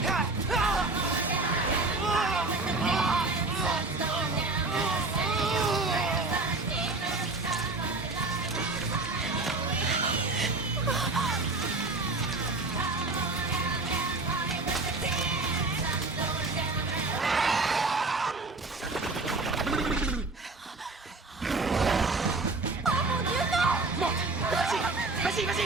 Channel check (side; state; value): left; quieter; 3.4 dB